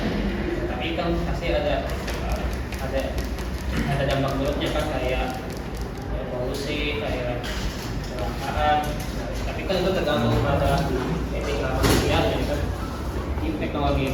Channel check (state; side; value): identical; both; correlation 1.00